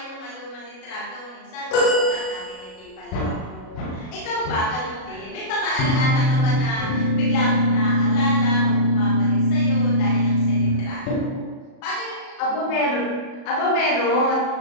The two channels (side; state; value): right; late; 37 ms